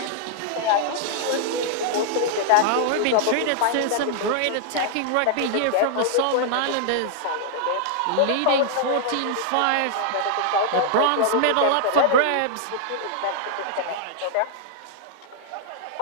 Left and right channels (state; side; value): different; both; correlation -0.01